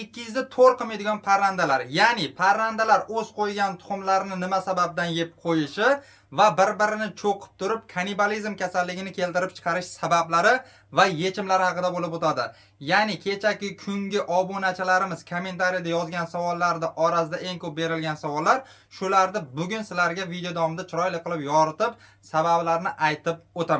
qilmaydigan parrandalar. Ya'ni parrandalar o'z qo'ygan tuxumlarini nima sababdan yeb qo'yishi va bir-birini cho'qib turib kannibalizm kasalligini keltirib chiqarish sabablari va yechimlari haqida bo'lib o'tadi. Ya'ni kechagi kungi obunachilarimiz kommentariyada yozgan savollarda orasida eng ko'p berilgan savollar, shularni bugun sizlarga video davomida chiroyli qilib yoritib, sabablarini aytib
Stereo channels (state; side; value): identical; both; correlation 1.00